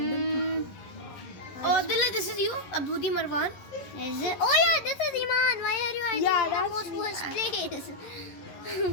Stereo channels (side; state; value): right; late; 11 ms